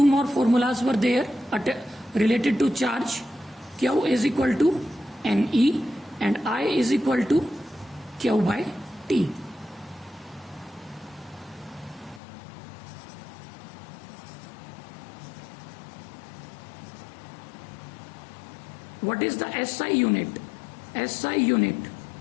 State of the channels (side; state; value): right; drops out; at 12.2 s